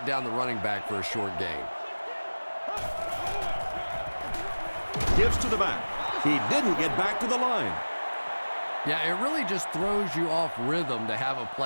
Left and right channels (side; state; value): both; inverted; correlation -1.00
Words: down the running back for a short gain. Gives to the back. He didn't get back to the line. Yeah, it really just throws you off rhythm to have a